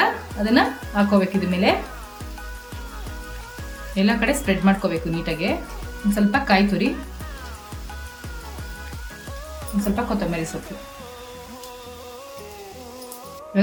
ಅದನ್ನ ಹಾಕೋಬೇಕು. ಇದ್ರ ಮೇಲೆ ಎಲ್ಲ ಕಡೆ ಸ್ಪ್ರೆಡ್ ಮಾಡ್ಕೋಬೇಕು ನೀಟಾಗಿ. ಒಂದು ಸ್ವಲ್ಪ ಕಾಯಿ ತುರಿ, ಒಂದು ಸ್ವಲ್ಪ ಕೊತ್ತಂಬರಿ ಸೊಪ್ಪು.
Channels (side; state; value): both; identical; correlation 1.00